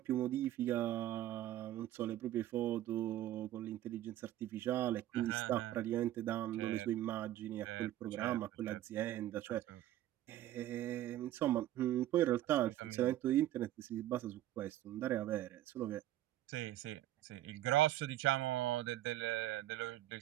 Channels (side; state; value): left; quieter; 13.7 dB